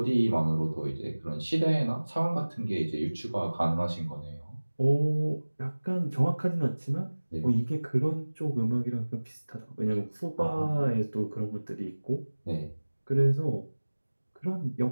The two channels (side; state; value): both; inverted; correlation -1.00